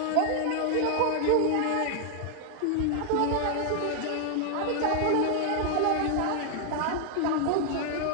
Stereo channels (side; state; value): both; different; correlation 0.00